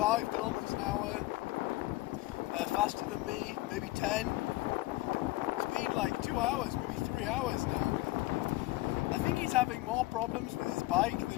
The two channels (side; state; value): right; quieter; 19.1 dB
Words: kilometers an hour faster than me, maybe 10. It's been like 2 hours, maybe 3 hours now. I think he's having more problems with his bike